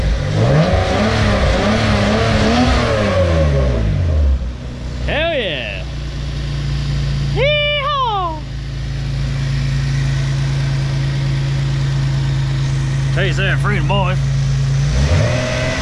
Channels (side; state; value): both; identical; correlation 1.00